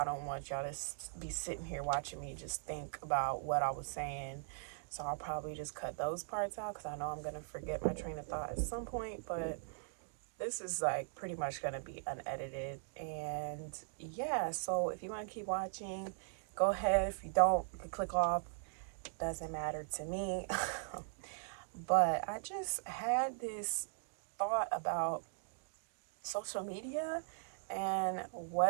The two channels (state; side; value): silent; left; digital silence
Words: don't want y'all to be sitting here watching me just think about what I was saying. So I'll probably just cut those parts out because I know I'm gonna forget my train of thought at some point, but this is like pretty much going to be unedited. And yeah, so if you want to keep watching, go ahead. If you don't, you can click off. Doesn't matter to me. But I just had this thought about social media and